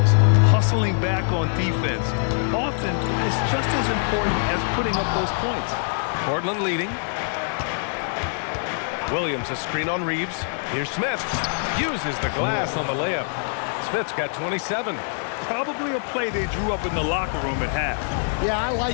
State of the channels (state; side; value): silent; right; digital silence